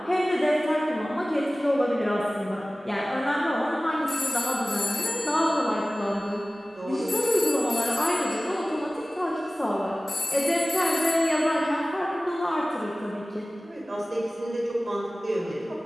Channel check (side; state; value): both; normal; correlation 0.97